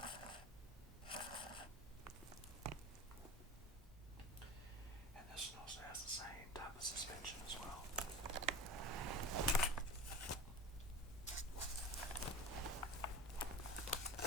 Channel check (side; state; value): both; normal; correlation 0.33